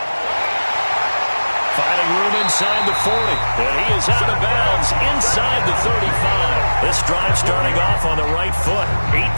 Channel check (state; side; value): inverted; both; correlation -1.00